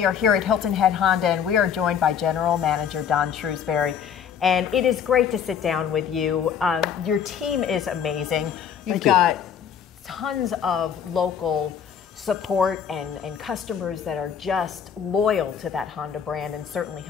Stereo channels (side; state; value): right; quieter; 8.0 dB